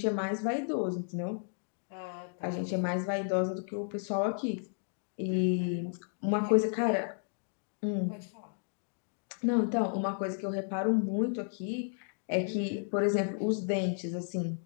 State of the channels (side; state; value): right; silent; digital silence